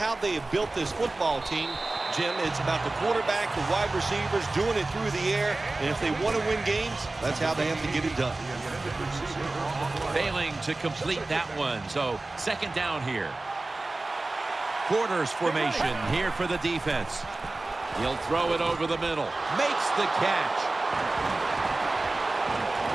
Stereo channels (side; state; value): left; quieter; 3.1 dB